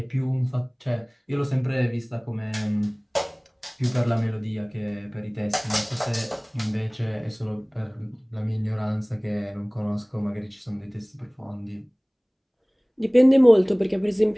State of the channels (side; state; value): both; identical; correlation 1.00